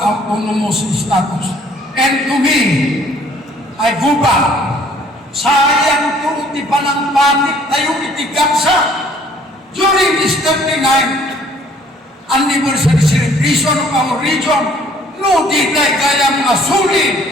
status. And to me, I go back, sayang to di panangpatik tayo itigamsa during this 39th anniversary celebration of our region. No di tayo kayang masulit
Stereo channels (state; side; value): normal; both; correlation 0.58